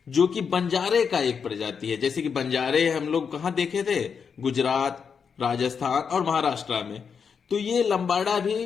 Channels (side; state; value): right; quieter; 6.3 dB